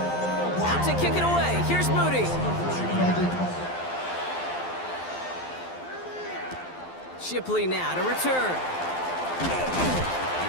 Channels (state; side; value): late; right; 12 ms